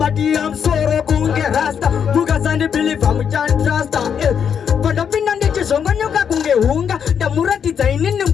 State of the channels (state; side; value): quieter; right; 7.6 dB